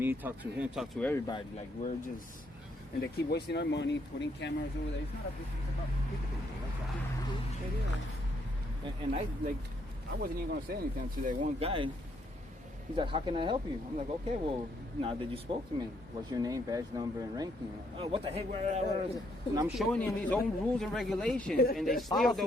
talk to him, talk to everybody. Like we're just, and they keep wasting our money, putting cameras over there. It's not a business, it's about people. And I wasn't even gonna say anything to that one guy. He's like, "How can I help you?" I'm like, "Okay, well, now that you spoke to me, what's your name, badge number, and ranking?" Oh, what the heck? And I'm showing him his own rules and regulations, and they still Policy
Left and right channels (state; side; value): normal; both; correlation 0.72